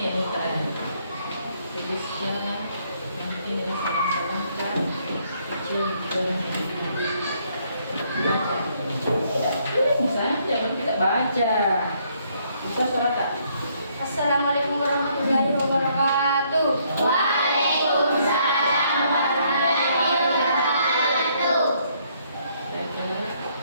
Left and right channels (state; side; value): inverted; both; correlation -0.69